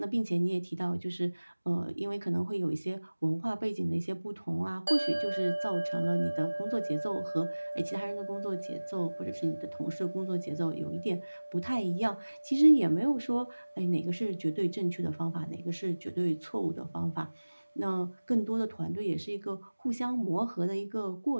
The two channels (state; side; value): inverted; both; correlation -1.00